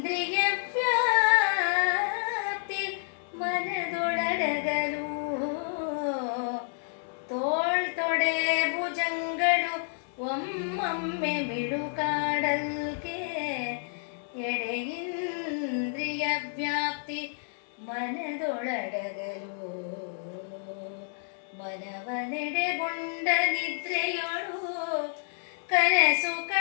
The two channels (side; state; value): right; silent; digital silence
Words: ವ್ಯಾಪ್ತಿ ಮನದೊಳಡಗಲು ತೋಳ್ ತೊಡೆ ಭುಜಂಗಳು ಒಮ್ಮೊಮ್ಮೆ ಮಿಡುಕಾಡಲ್ಕೆ ಎಡೆ ಇಂದ್ರಿಯ ವ್ಯಾಪ್ತಿ ಮನದೊಳಡಗಲು ಮನವನೆಡೆಗೊಂಡ ನಿದ್ರೆಯೊಳು ಕನಸು